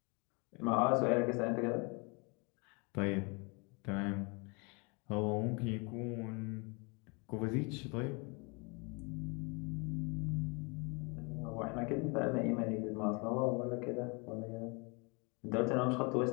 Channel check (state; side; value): quieter; right; 31.2 dB